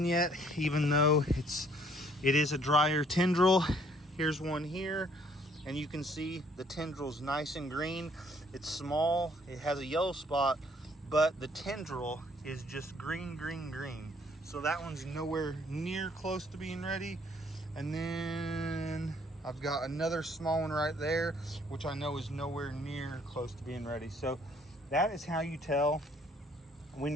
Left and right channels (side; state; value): both; normal; correlation 0.63